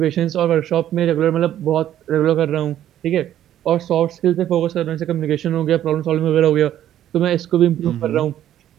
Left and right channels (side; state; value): left; quieter; 11.6 dB